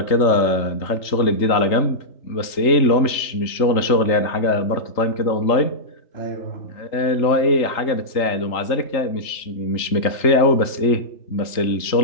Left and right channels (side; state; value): right; late; 3.3 ms